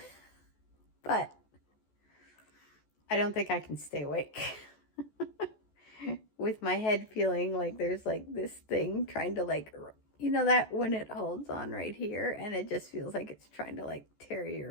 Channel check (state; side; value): late; right; 14 ms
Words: But I don't think I can stay awake. With my head feeling like there's like this thing trying to like, you know, that when it holds on right here and it just feels like it's trying to like